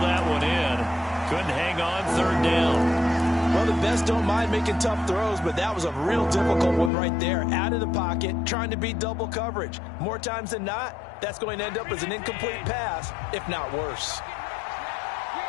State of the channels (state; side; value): drops out; right; at 6.9 s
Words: that one in. Couldn't hang on third down. Well, the best don't mind making tough throws, but that was a real difficult one right there. Out of the pocket, trying to beat double coverage. More times than not, that's going to end up as an incomplete pass, if not worse.